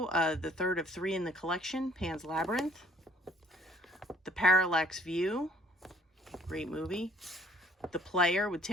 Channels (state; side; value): normal; both; correlation 0.58